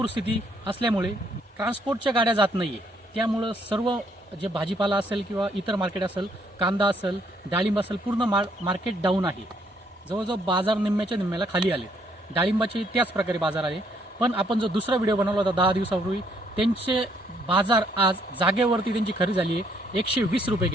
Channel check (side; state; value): both; normal; correlation 0.69